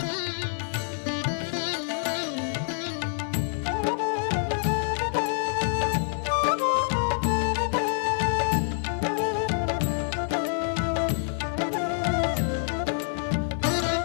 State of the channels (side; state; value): right; silent; digital silence